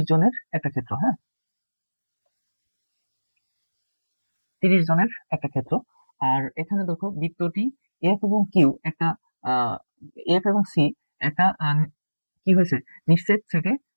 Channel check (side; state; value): both; inverted; correlation -1.00